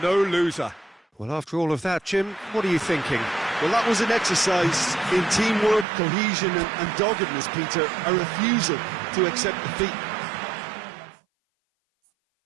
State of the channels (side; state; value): left; drops out; at 5.9 s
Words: No loser. Well, after all of that, Jim, what are you thinking? Well, that was an exercise in teamwork, cohesion and doggedness, Peter. A refusal to accept defeat.